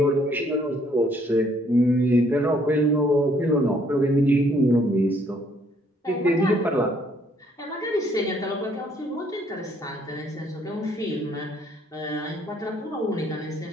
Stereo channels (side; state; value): both; normal; correlation 0.65